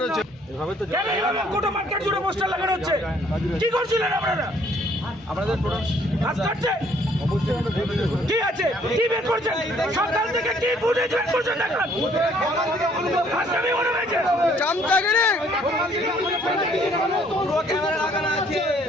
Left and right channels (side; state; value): both; normal; correlation 0.62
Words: কি করছিলেন আপনারা? আপনাদের কি আছে? কি বের করছেন? সকাল থেকে কি ফুটেজ বের করছেন? দেখেন আসামি মনে হয়েছে চামচাগিরি ক্যামেরা লাগানো আছে,